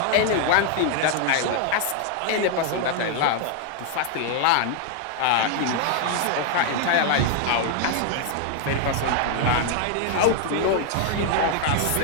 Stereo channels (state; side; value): different; both; correlation 0.00